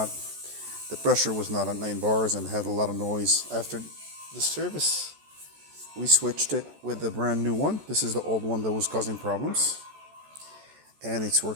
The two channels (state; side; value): late; left; 14 ms